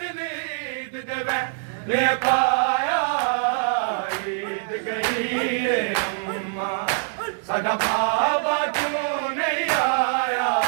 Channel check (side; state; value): left; silent; digital silence